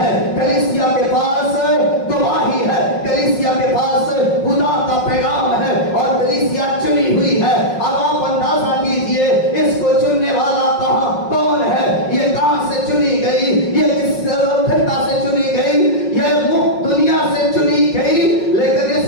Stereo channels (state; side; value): late; right; 5.5 ms